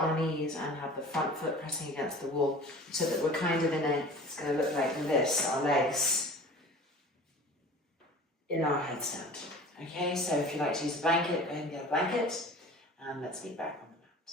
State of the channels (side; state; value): both; normal; correlation 0.42